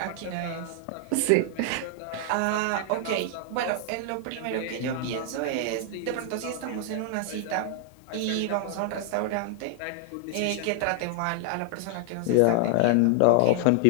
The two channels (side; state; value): both; different; correlation 0.00